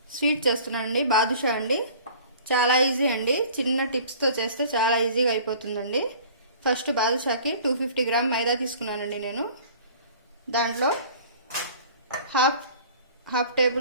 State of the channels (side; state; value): both; inverted; correlation -0.47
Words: స్వీట్ చేస్తున్నానండి. బాదుషా అండి. చాలా ఈజీ అండి. చిన్న టిప్స్తో చేస్తే చాలా ఈజీగా అయిపోతుందండి. ఫస్ట్ బాదుషాకి 250 గ్రామ్ మైదా తీసుకున్నానండి నేను. దాంట్లో